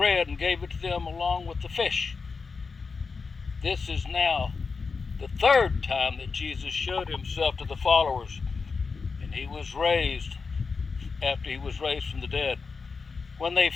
and gave it to them along with the fish. This is now the third time that Jesus showed himself to the followers, and he was raised after he was raised from the dead. When they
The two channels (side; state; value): right; quieter; 4.8 dB